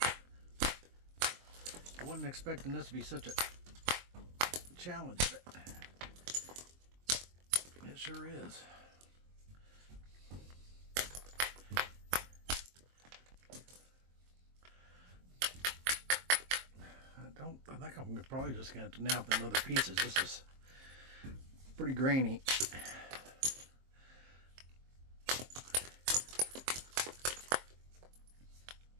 I wasn't expecting this to be such a challenge, but it sure is. I think I'm probably just going to have to nap them other pieces. This is pretty grainy.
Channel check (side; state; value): left; late; 23 ms